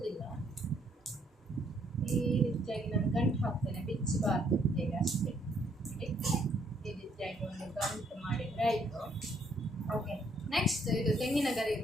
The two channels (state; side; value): normal; both; correlation 0.68